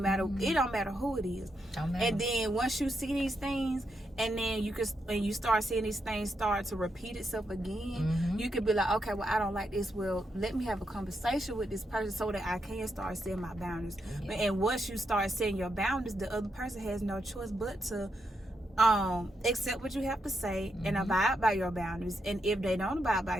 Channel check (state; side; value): normal; both; correlation 0.82